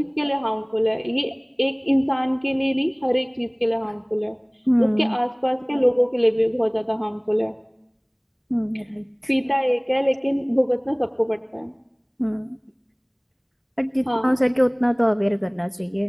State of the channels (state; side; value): identical; both; correlation 1.00